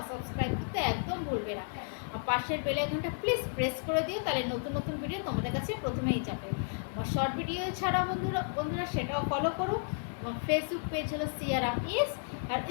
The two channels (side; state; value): right; silent; 56 dB below the other